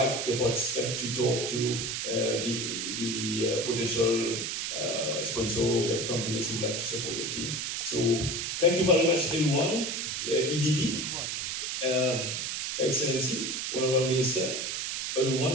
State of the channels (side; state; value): right; noise; hiss, 2 dB below the sound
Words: the participants to talk to the potential sponsor web companies who would like to support the team. So thank you very much, everyone. EDB, Excellency, Honorable Minister,